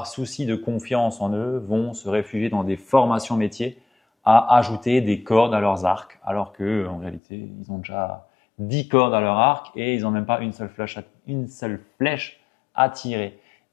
souci de confiance en eux, vont se réfugier dans des formations métiers à ajouter des cordes à leurs arcs, alors qu'en réalité, ils ont déjà 10 cordes à leur arc et ils n'ont même pas une seule flèche à tirer.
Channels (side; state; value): right; drops out; at 7.2 s